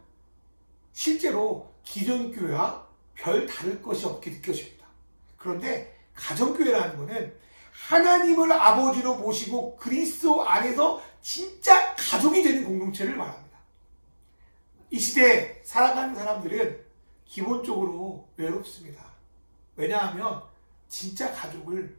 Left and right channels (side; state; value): both; inverted; correlation -1.00